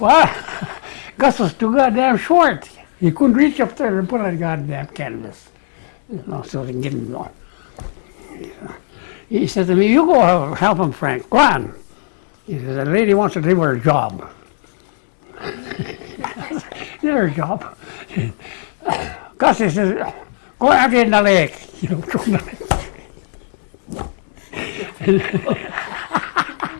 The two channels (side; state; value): right; silent; digital silence